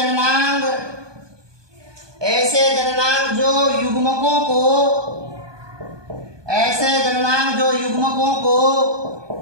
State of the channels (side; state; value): left; late; 1.2 ms